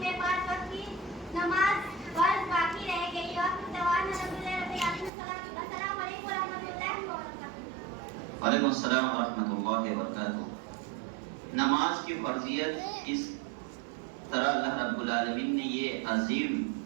میں 5 وقت کی نماز فرض باقی رہ گئی۔ السلام علیکم ورحمۃ اللہ وبرکاتہ۔ وعلیکم السلام ورحمۃ اللہ وبرکاتہ۔ نماز کی فرضیت اس طرح اللہ رب العالمین نے یہ عظیم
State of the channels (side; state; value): left; drops out; at 5.1 s